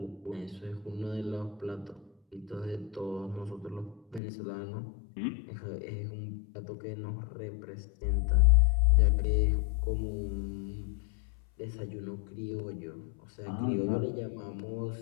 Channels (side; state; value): right; drops out; at 4.2 s